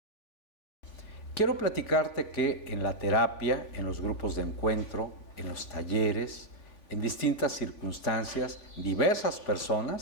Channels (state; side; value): late; right; 3.5 ms